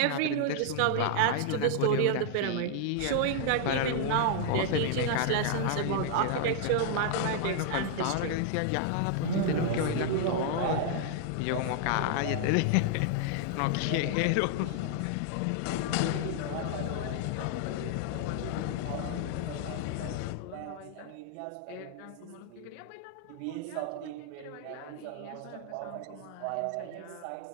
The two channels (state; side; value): different; both; correlation 0.00